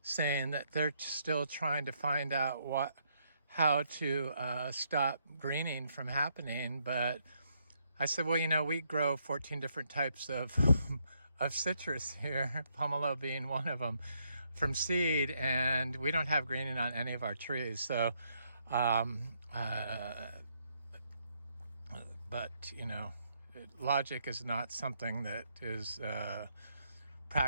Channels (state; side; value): inverted; both; correlation -0.74